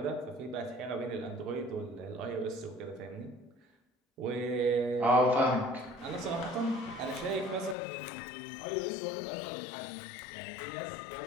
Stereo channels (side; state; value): right; drops out; at 7.8 s